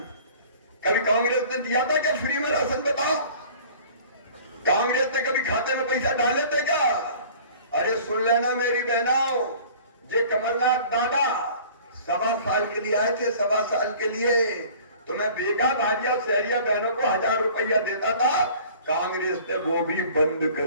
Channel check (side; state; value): both; inverted; correlation -0.48